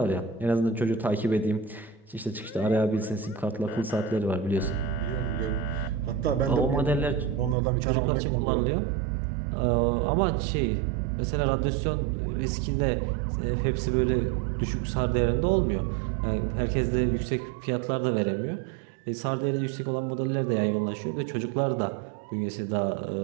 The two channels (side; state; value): left; drops out; at 7.6 s